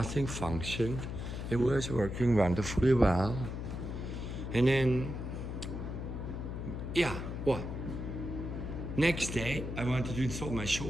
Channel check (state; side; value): noise; left; hum, 5 dB below the sound